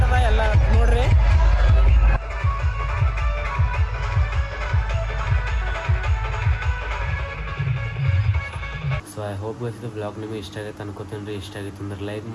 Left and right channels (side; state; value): both; identical; correlation 1.00